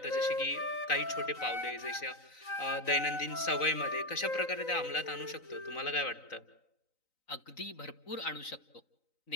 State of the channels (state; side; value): late; right; 3.9 ms